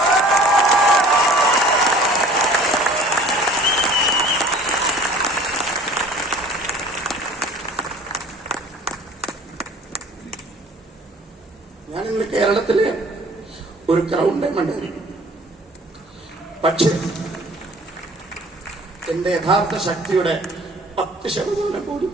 ഞാനിന്ന് കേരളത്തിലെ ഒരു ക്രൗൺ ഡയമണ്ട് ആയിരിക്കും. പക്ഷെ എന്റെ യഥാർത്ഥ ശക്തിയുടെ 10% പോലും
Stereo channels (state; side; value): normal; both; correlation 0.49